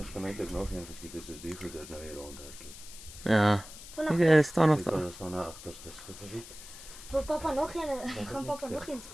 kan eintlik nog een geskiet het soos die goeders nou hier rondhardloop. Ja. Vanaf Ek staan nog Ek daar. kan staan na agterste skip. wil papa nog een, gaan papa nog een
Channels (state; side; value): noise; left; hiss, 15 dB below the sound